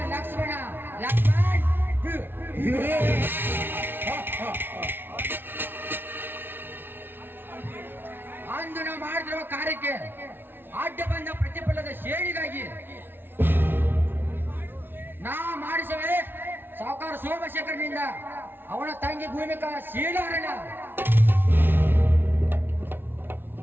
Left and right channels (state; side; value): late; left; 0.10 ms